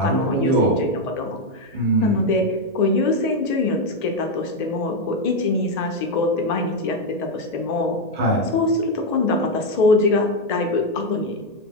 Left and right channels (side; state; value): right; late; 1.9 ms